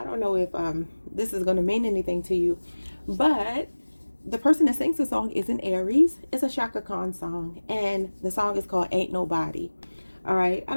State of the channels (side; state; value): both; inverted; correlation -1.00